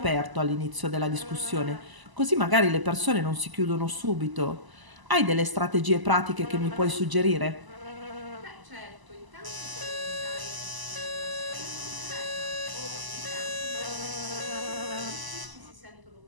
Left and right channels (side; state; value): left; late; 1.0 ms